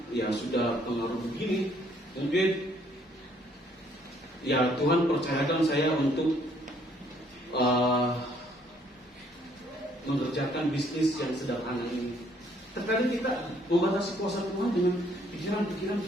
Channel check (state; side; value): normal; both; correlation 0.65